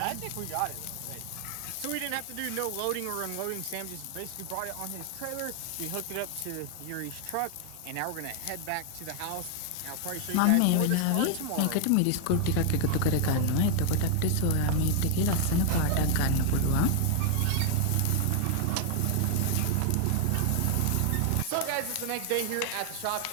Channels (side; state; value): both; different; correlation 0.00